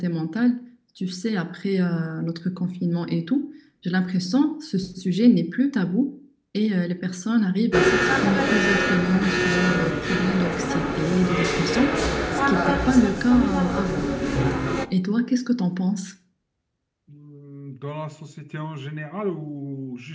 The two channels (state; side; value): identical; both; correlation 1.00